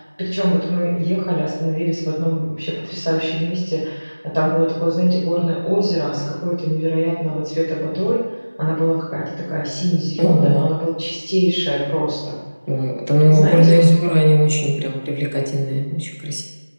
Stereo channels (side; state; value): both; inverted; correlation -1.00